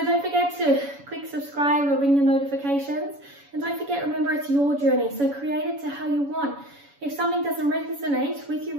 don't forget to click subscribe or ring the notifications. And don't forget, remember, it's your journey. So create it to how you want. If something doesn't resonate with you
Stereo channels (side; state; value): left; late; 7.1 ms